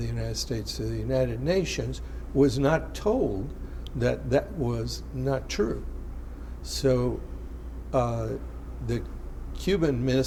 United States to the United Nations, was not told that that was not true. So the Cuban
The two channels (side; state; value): both; identical; correlation 1.00